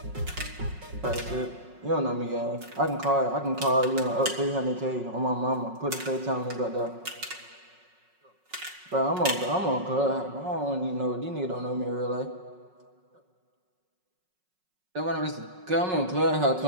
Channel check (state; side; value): late; left; 5.4 ms